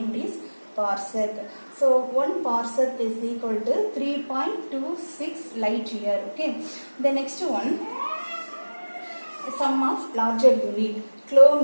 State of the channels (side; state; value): both; inverted; correlation -1.00